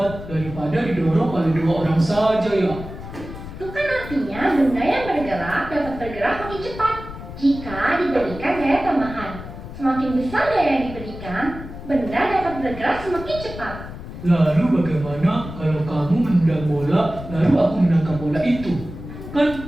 daripada didorong oleh 2 orang saja ya. Itu kan artinya benda yang bergerak dapat bergerak makin cepat jika diberikan gaya tambahan. Semakin besar gaya yang diberikan, benda dapat bergerak semakin cepat. Lalu bagaimana kalau kamu menendang bola, lalu aku menangkap bola itu?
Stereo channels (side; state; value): left; noise; rumble, 12 dB below the sound